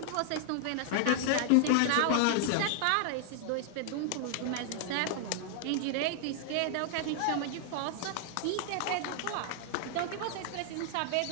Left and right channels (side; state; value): both; different; correlation 0.00